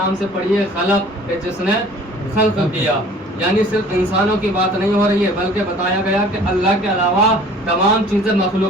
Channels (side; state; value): both; normal; correlation 0.50